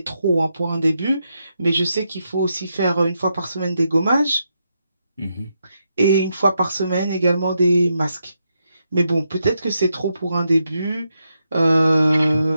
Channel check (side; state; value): both; inverted; correlation -0.83